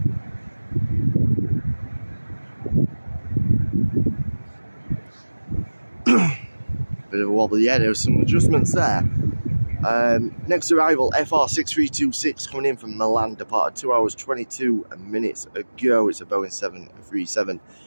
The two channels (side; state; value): both; inverted; correlation -1.00